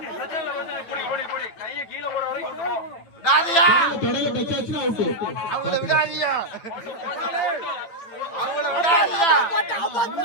அவங்கள விடாதியா, அவங்கள விடாதியா.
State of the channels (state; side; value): late; right; 9.0 ms